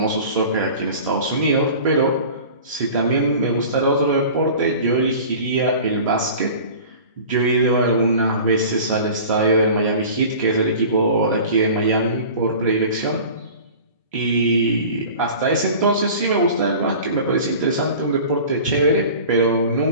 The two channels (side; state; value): both; inverted; correlation -0.40